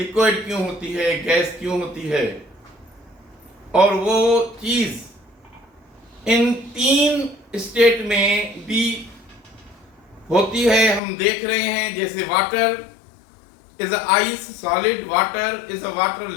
क्यों होती है, गैस क्यों होती है, और वो चीज इन 3 स्टेट में भी होती है। हम देख रहे हैं जैसे water is a ice solid, water is a water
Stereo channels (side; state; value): right; drops out; at 11.0 s